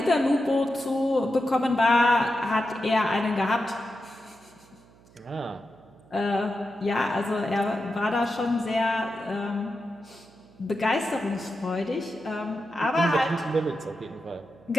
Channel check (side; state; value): right; noise; hum, 27 dB below the sound